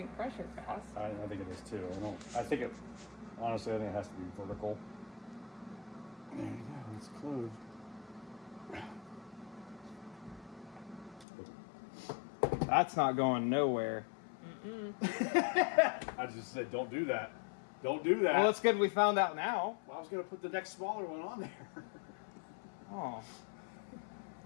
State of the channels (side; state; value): right; drops out; at 11.2 s